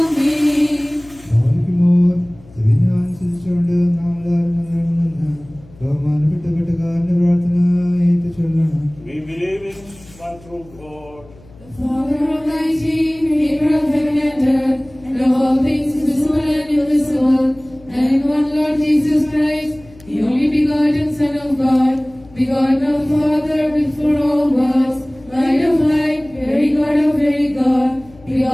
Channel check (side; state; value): left; noise; hum, 24 dB below the sound